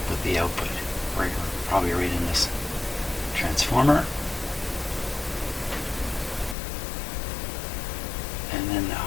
with the output, right, probably right in this transformer. And then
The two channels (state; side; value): drops out; right; at 6.6 s